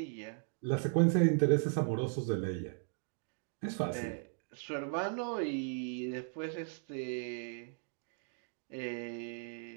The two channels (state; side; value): silent; left; 53 dB below the other